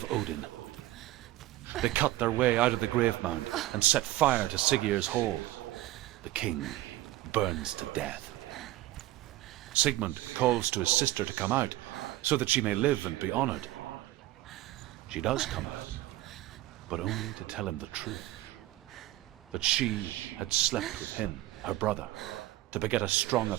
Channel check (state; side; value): quieter; left; 16.1 dB